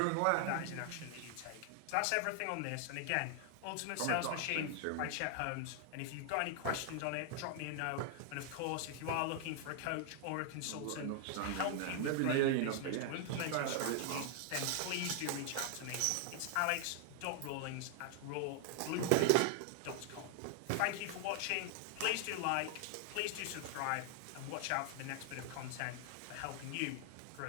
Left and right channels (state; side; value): different; both; correlation 0.00